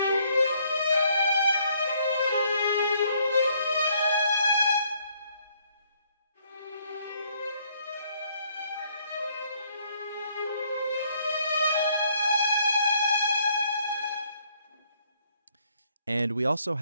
And we also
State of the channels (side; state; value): both; inverted; correlation -0.68